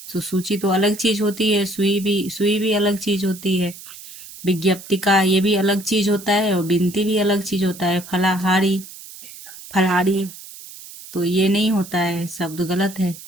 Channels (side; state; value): right; noise; hiss, 16 dB below the sound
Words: तो सूची तो अलग चीज होती है, सुई भी अलग चीज होती है। विज्ञप्तिका ये भी अलग चीज होता है, और बिनती भी अलग चीज होता है। फलाहारी, फलहारी, तो ये नहीं होता है, शब्द गलत है।